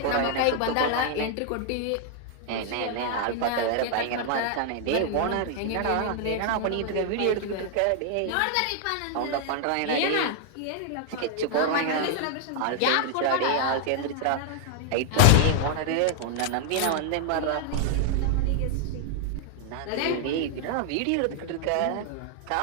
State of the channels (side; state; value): both; different; correlation 0.00